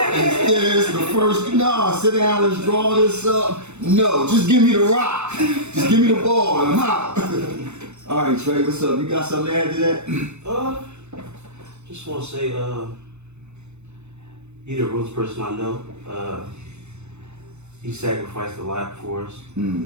this, the first, no, sit down, let's draw this up. No, just give me the rock. Just give me the ball and I'm out. All right, Trey, what's up? You got something to add to that? Just want to say, you're the realest person I know. He sacrificed a lot for us.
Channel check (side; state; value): left; late; 0.82 ms